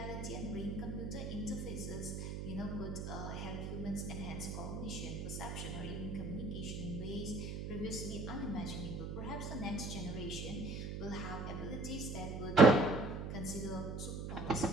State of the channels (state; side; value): noise; right; hum, 5 dB below the sound